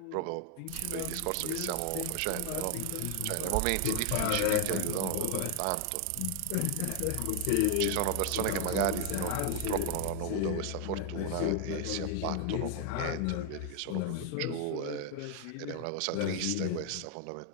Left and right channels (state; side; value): different; both; correlation 0.00